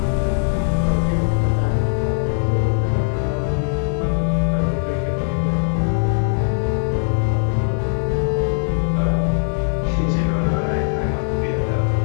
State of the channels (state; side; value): silent; right; digital silence